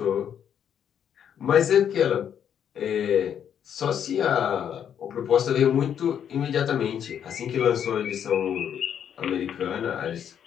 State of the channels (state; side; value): quieter; right; 8.8 dB